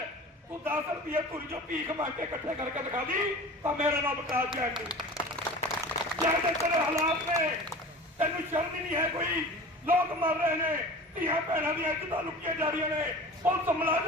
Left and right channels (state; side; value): normal; both; correlation 0.38